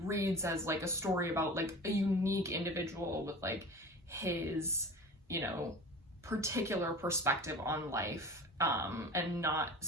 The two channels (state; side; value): normal; both; correlation 0.36